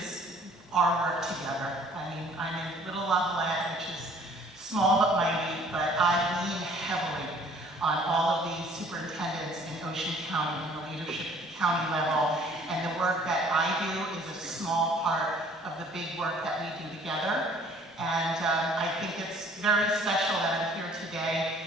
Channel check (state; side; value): normal; both; correlation 0.55